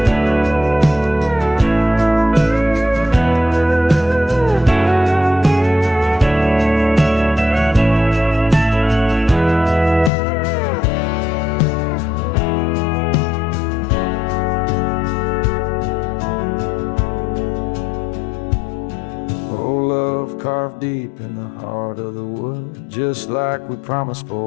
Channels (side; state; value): right; drops out; at 10.1 s